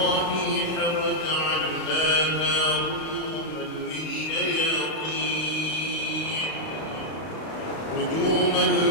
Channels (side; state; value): right; late; 31 ms